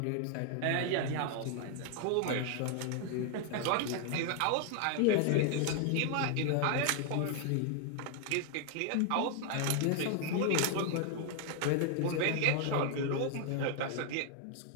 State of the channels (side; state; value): both; different; correlation 0.00